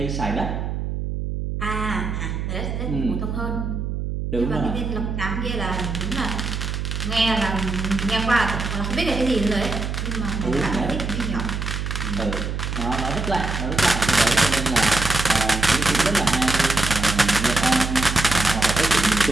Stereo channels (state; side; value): noise; right; hum, 3 dB below the sound